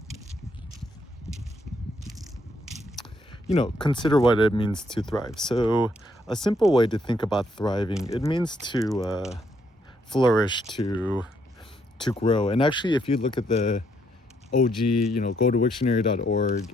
consider what it means to thrive. So, a simple way to think about thriving, it means to flourish, to grow. And actually, if you look at the OG, go to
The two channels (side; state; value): both; normal; correlation 0.73